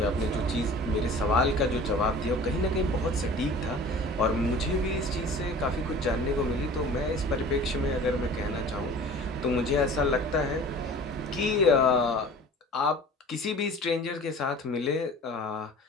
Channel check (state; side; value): normal; both; correlation 0.43